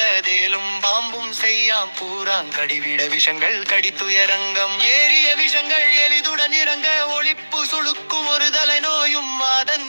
தேலும் பாம்பும் செய்யாம் பூராங்கடிவிட விஷங்கள் கடித்துயரங்கம் ஏறிய விஷங்கள் எளிதுடன் இறங்க ஒளிப்பு சுழுக்கும் ஒரு தலை நோயும் வாதன்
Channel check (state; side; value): inverted; both; correlation -1.00